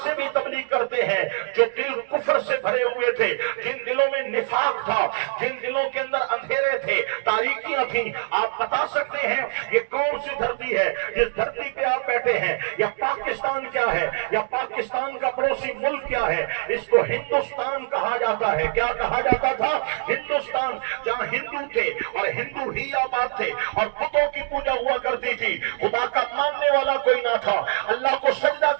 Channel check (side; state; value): left; silent; digital silence